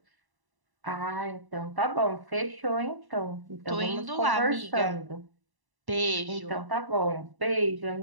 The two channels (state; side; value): late; left; 1.0 ms